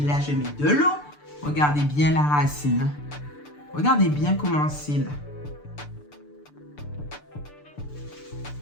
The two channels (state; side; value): late; right; 6.8 ms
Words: là, je mets de l'eau. Regardez bien la racine. Regardez bien comment c'est là.